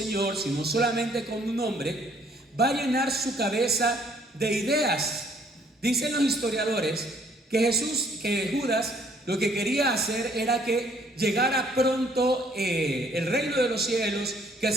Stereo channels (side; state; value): both; normal; correlation 0.63